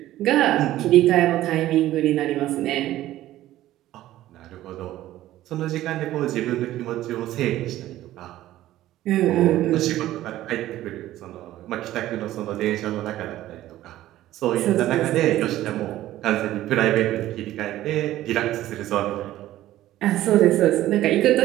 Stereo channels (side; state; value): left; quieter; 14.4 dB